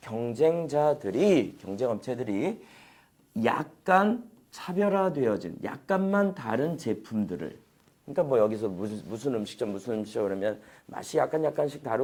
경쟁업체들이 약간 차별화되어진, 약간만 다른 제품들을 그러니까 뭐 여기서 무슨 음식점 그러면 맛이 약간씩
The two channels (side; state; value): both; identical; correlation 1.00